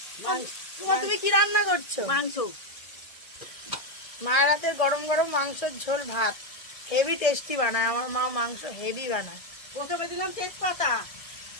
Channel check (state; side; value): late; right; 1.6 ms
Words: তুমি কি রান্না করছো? মাংস। মায়ের হাতের গরম গরম মাংসের ঝোল ভাত হেভি টেস্টি বানায় আমার মা, মাংস হেভি বানায়। প্রথমে দিলাম তেজপাতা,